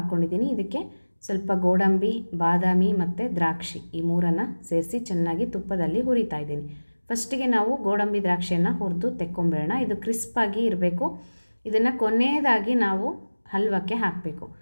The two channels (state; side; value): inverted; both; correlation -1.00